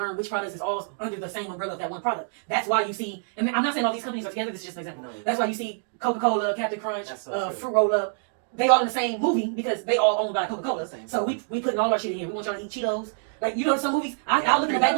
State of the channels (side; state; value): left; silent; digital silence